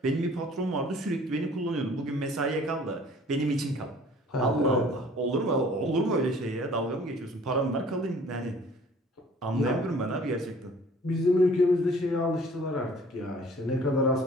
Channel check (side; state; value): both; normal; correlation 0.52